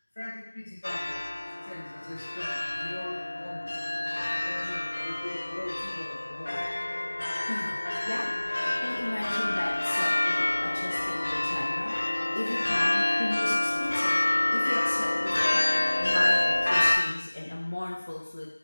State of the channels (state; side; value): inverted; both; correlation -1.00